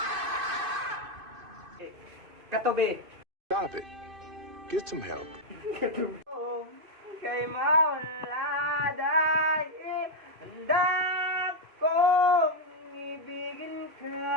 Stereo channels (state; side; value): late; left; 2.5 ms